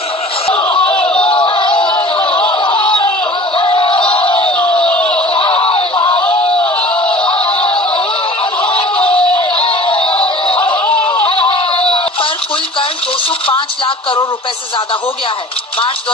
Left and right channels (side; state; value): both; normal; correlation 0.44